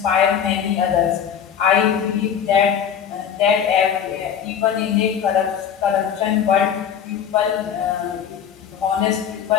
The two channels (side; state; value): right; quieter; 8.3 dB